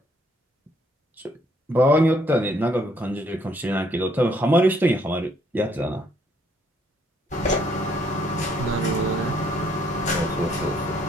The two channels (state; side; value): normal; both; correlation 0.68